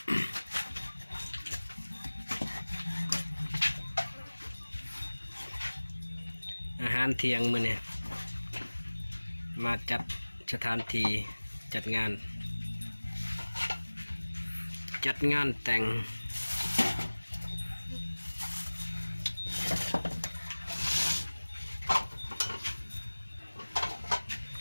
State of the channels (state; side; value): inverted; both; correlation -1.00